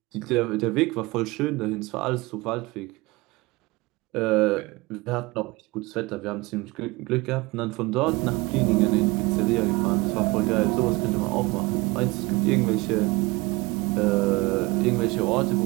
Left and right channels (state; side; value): quieter; left; 23.1 dB